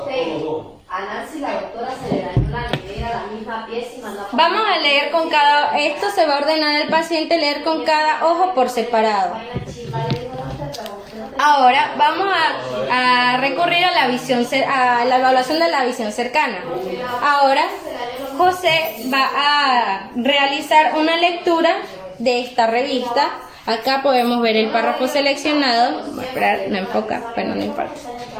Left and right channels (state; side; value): identical; both; correlation 1.00